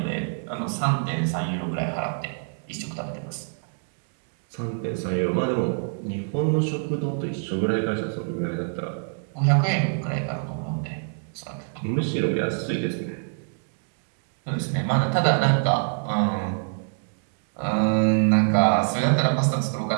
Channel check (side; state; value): left; silent; 61 dB below the other